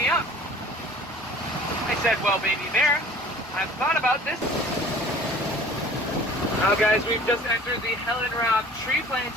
up." I said, "Well, baby bear, I've thought about this." Now guys, we've just entered the Helen Robb tree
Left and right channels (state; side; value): normal; both; correlation 0.48